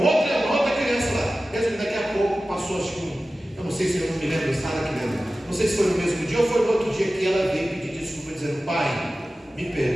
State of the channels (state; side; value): normal; both; correlation 0.95